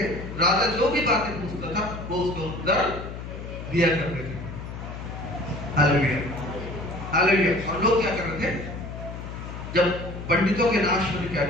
राजा जो भी बातें पूछता था वो उसको उत्तर दिया करते थे। Hallelujah, hallelujah. और लोग क्या कर रहे थे? जब पंडितों के नाश होने क्या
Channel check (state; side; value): noise; left; hum, 9 dB below the sound